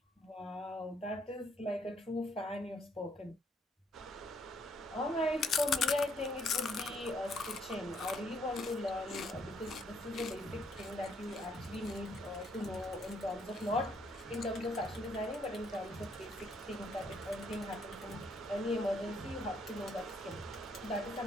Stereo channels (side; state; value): both; normal; correlation 0.69